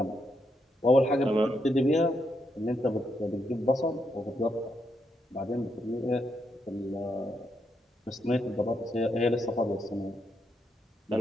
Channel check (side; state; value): both; normal; correlation 0.80